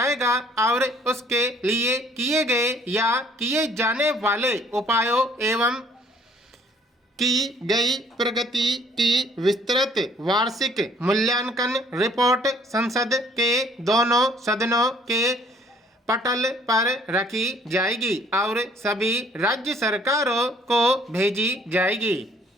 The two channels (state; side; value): normal; both; correlation 0.60